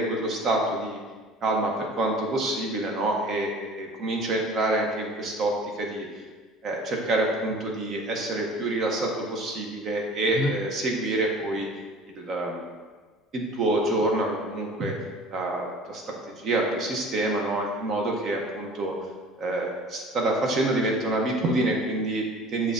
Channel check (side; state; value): both; normal; correlation 0.44